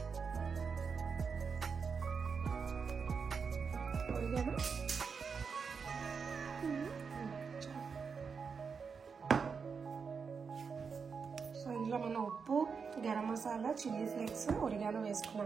సో ఇందులో మనం ఉప్పు, garam masala, chilli flakes, oregano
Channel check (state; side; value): quieter; left; 5.7 dB